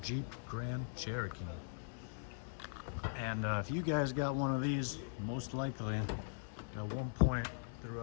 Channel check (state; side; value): silent; right; digital silence